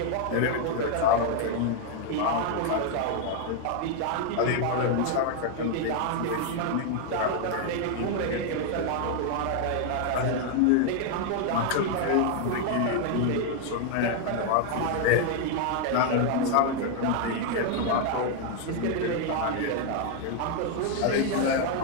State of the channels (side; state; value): both; different; correlation 0.00